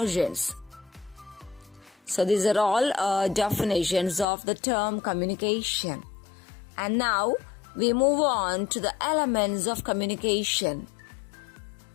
So these are all definitions of the term communication. And now we move on to the elements of communication.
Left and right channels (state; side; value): drops out; right; at 4.2 s